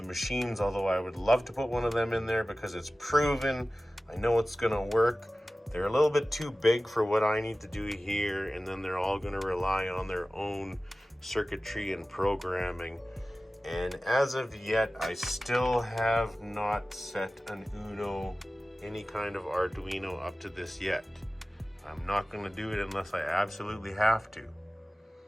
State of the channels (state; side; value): normal; both; correlation 0.96